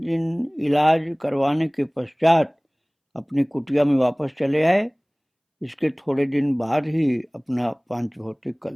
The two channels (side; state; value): both; identical; correlation 1.00